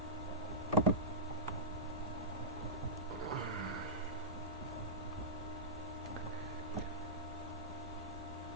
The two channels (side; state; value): both; normal; correlation -0.16